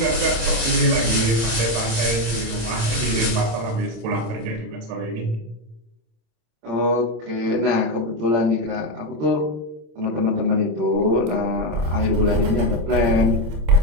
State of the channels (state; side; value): late; left; 26 ms